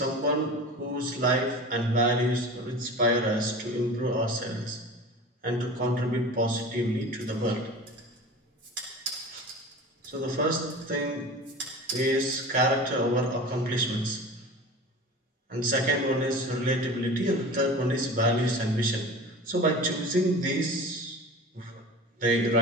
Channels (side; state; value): both; normal; correlation 0.36